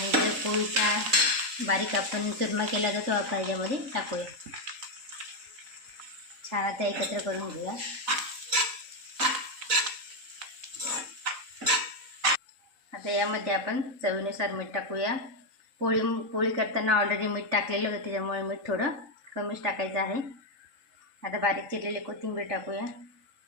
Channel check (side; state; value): left; late; 3.8 ms